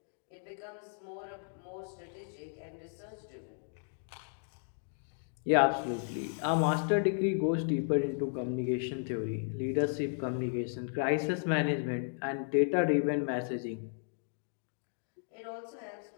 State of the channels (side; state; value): right; silent; digital silence